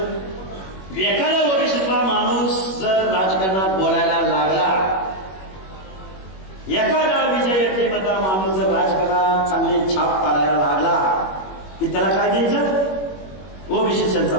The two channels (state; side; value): late; right; 21 ms